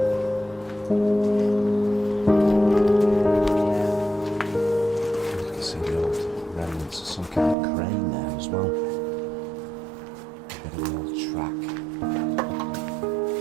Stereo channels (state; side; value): drops out; left; at 7.6 s